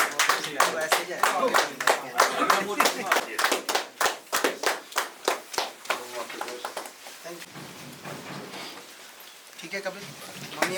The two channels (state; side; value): identical; both; correlation 1.00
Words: ठीक है कपिल, मम्मी